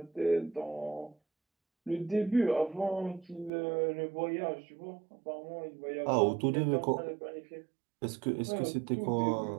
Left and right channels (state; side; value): drops out; left; at 3.5 s